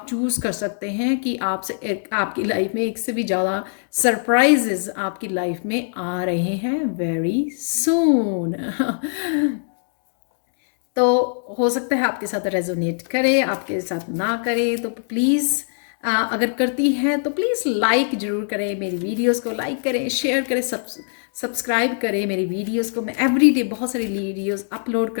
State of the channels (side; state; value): right; silent; digital silence